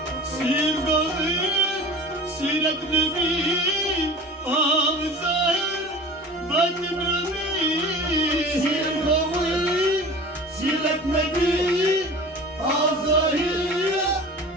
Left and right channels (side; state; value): both; normal; correlation 0.39